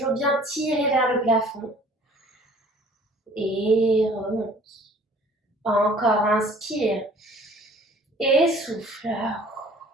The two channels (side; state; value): both; normal; correlation 0.52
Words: bien tiré vers le plafond. Et remonte. Encore, inspire. Et souffle.